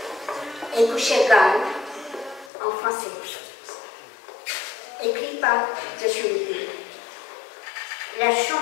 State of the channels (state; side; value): drops out; right; at 2.5 s